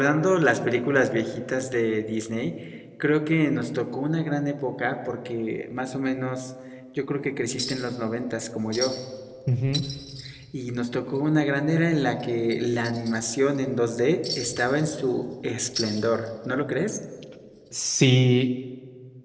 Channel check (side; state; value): both; identical; correlation 1.00